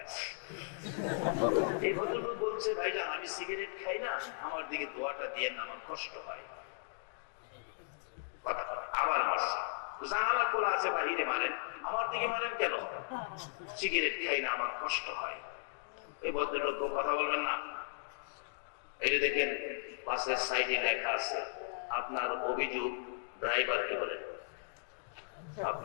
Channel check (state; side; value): silent; right; digital silence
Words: এই ভদ্রলোক বলছে ভাইজান আমি সিগারেট খাই না, আমার দিকে দোয়াটা দিয়ে না, আমার কষ্ট হয়। কথা আবার মারছে, জানালা খোলা আছে বাহিরে মারেন, আমার দিকে মারেন কেন? সিগারেট খাই না, আমার কষ্ট হয়। এই ভদ্রলোক কথা বলবেন না। এই যে দেখেন বাসের সাইডে লেখা আছে আপনার অভিযোগ ড্রাইভারকে বলেন,